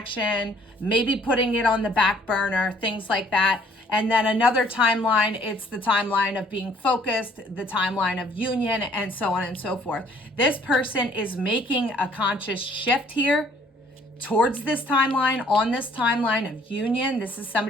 maybe putting it on the back burner, things like that. And then another timeline, it's the timeline of being focused, the timeline of union, and so on and so forth. This person is making a conscious shift here towards this timeline, on this timeline of union. This is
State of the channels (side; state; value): both; normal; correlation 0.59